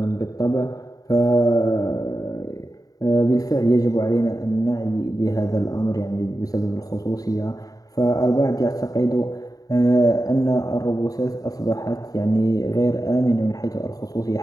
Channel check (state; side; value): late; right; 0.18 ms